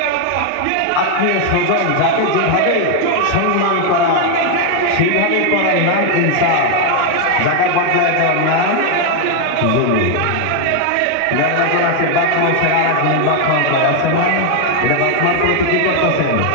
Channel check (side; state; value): both; different; correlation 0.00